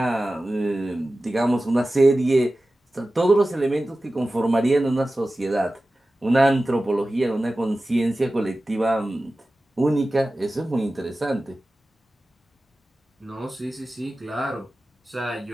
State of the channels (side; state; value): both; normal; correlation 0.95